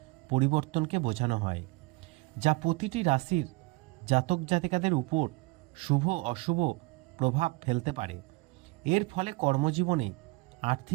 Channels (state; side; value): quieter; left; 25.0 dB